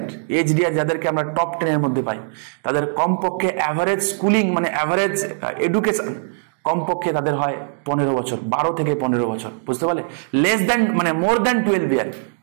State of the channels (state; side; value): silent; left; digital silence